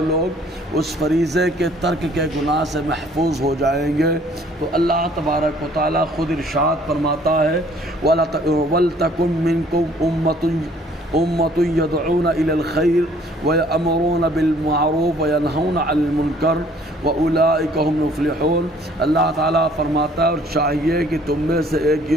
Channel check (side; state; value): both; normal; correlation 0.58